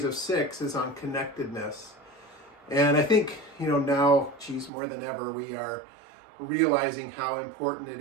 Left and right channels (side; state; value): left; drops out; at 4.7 s